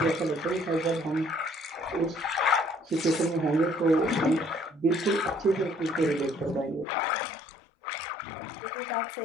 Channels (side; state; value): right; drops out; at 6.9 s